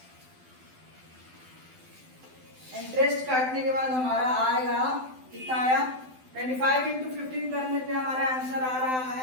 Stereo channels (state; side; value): late; left; 12 ms